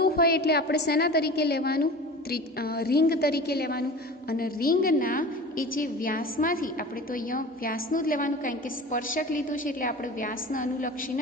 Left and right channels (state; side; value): normal; both; correlation 0.36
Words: હોય એટલે આપણે શેના તરીકે લેવાનું? રિંગ તરીકે લેવાનું. અને રિંગના એ જે વ્યાસમાંથી, આપણે તો અહીંયા વ્યાસનું જ લેવાનું, કારણ કે સ્પર્શક લીધું છે એટલે આપણે વ્યાસના